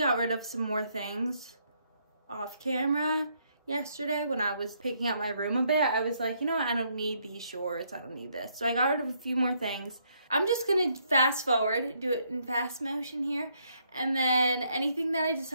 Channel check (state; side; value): inverted; both; correlation -0.72